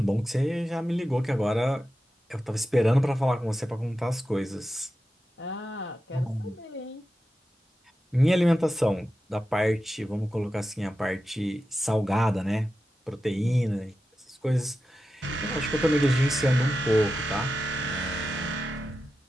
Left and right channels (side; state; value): both; normal; correlation 0.91